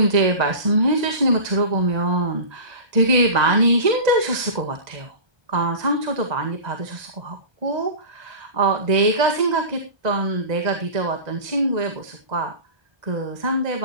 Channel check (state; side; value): late; left; 1.2 ms